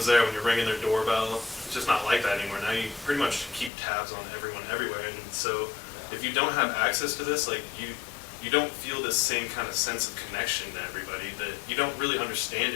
there when you're ringing their doorbell. It's just not like that anymore. Now you pretty much keep tabs on everyone everywhere, and so if you don't have access to this, like you don't feel this same kind of sense of connection to everybody, that you don't really understand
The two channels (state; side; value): drops out; right; at 3.7 s